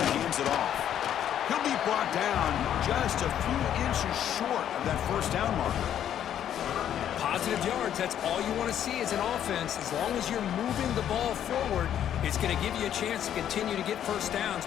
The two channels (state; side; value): quieter; right; 10.2 dB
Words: hands it off. He'll be brought down just a few inches short of that first down marker. Positive yards, that's all you want to see as an offense. As long as you're moving the ball forward, it's going to give you a chance to continue to get first downs.